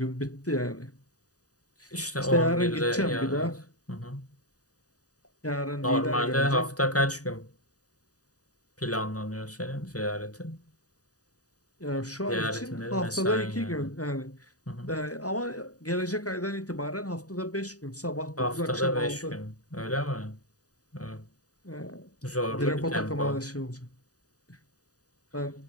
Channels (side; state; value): right; late; 0.67 ms